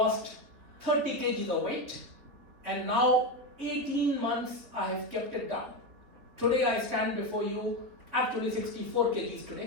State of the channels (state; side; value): late; left; 4.1 ms